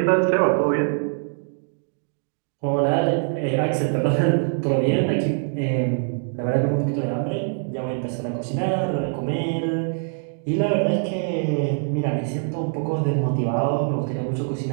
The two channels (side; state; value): left; silent; 60 dB below the other